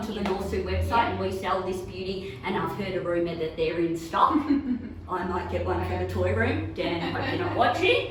the Norsu website and we sell this beauty, and I've heard a rumour that they're in stock. I might get one for the toy room. Dan, I hope you're not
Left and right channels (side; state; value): both; identical; correlation 1.00